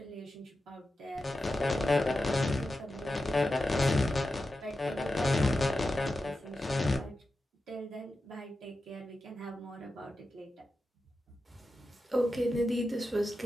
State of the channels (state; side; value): normal; both; correlation 0.91